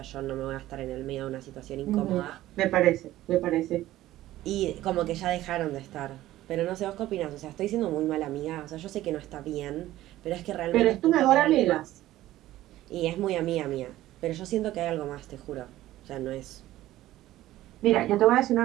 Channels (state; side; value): quieter; left; 15.1 dB